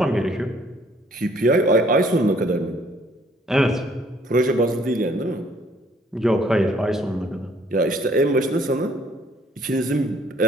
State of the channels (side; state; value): both; normal; correlation 0.62